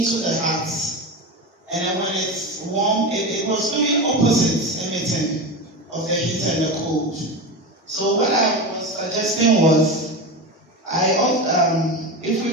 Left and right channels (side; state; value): both; normal; correlation 0.22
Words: the house. And then when it's warm, it was doing opposite emitting of the heat and the cold. So what I was suggesting was, if we